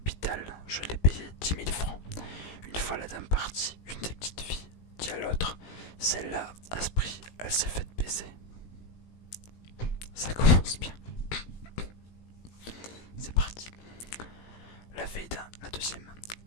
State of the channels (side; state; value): right; late; 18 ms